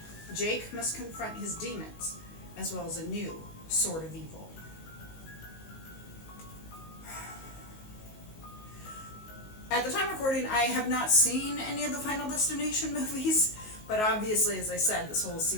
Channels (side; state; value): right; late; 19 ms